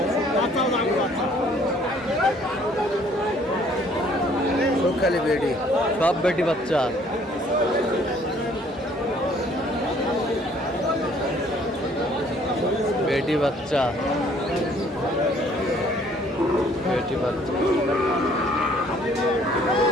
সব খালি বেডি, সব বেটি বাচ্চা। বেটি বাচ্চা, বেটি বাচ্চা।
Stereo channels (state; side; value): normal; both; correlation 0.60